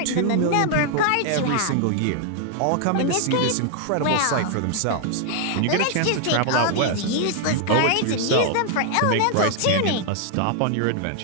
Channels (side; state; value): both; different; correlation 0.00